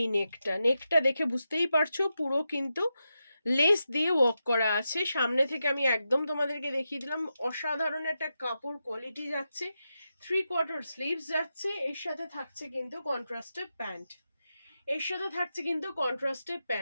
নেকটা, নেকটা দেখে বুঝতেই পারছো পুরো কিন্তু লেস দিয়ে ওয়ার্ক করা আছে। সামনে থেকে আমি একদম তোমাদেরকে দেখিয়ে দিলাম, অসাধারণ একটা কাপড় কোয়ালিটি যাচ্ছে, 3/4 স্লিভস যাচ্ছে, এর সাথে থাকছে কিন্তু কন্ট্রাস্টেড প্যান্ট, এর সাথে থাকছে কিন্তু কন্ট্রাস্টেড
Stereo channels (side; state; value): both; inverted; correlation -0.88